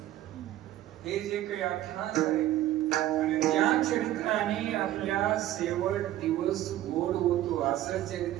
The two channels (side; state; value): left; quieter; 13.8 dB